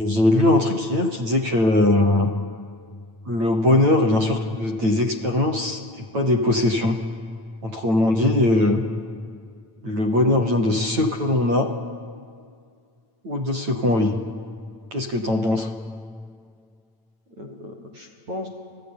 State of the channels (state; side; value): late; left; 9.0 ms